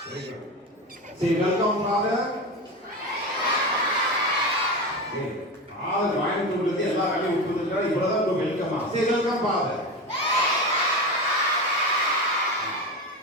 Say welcome, Father. வாங்கிட்டு எல்லா வேலையும் விட்டுருக்கா இவ்வளவுதான் வெல்கமா. Say welcome, Father.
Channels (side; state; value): both; normal; correlation 0.23